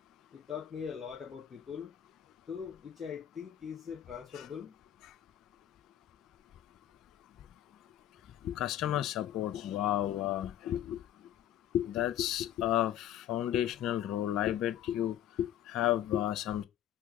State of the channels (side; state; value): right; quieter; 11.5 dB